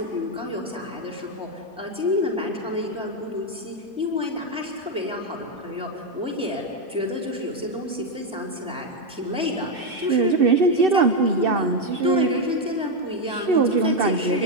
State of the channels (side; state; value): both; normal; correlation 0.06